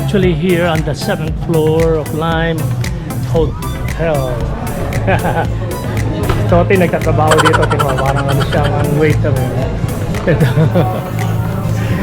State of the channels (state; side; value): identical; both; correlation 1.00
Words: here on the 7th floor of Lime Hotel. Toti nagtatrabaho dito, tingnan parang ano siyang waiter.